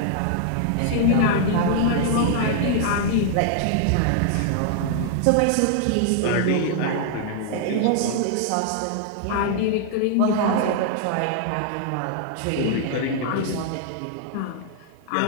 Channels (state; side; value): different; both; correlation 0.00